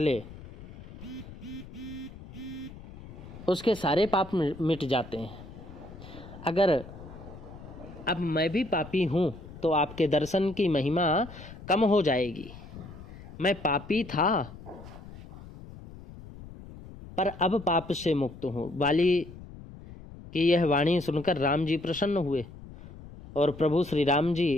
उसके सारे पाप मिट जाते हैं। अगर अब मैं भी पापी हूं तो आपके दर्शन की महिमा कम हो जाएगी। मैं पापी था पर अब पाप से मुक्त हूं। बाली की यह वाणी सुनकर राम जी प्रसन्न हुए और प्रभु श्री राम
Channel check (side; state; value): left; noise; rumble, 16 dB below the sound